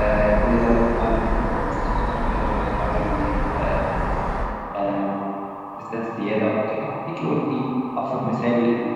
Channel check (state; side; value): identical; both; correlation 1.00